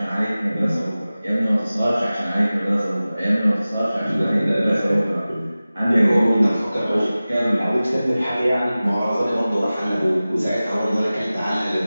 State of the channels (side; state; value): both; inverted; correlation -0.97